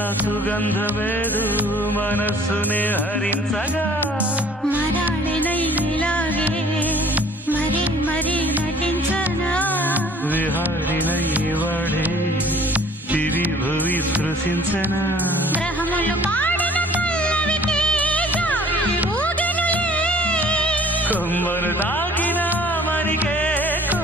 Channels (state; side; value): normal; both; correlation 0.52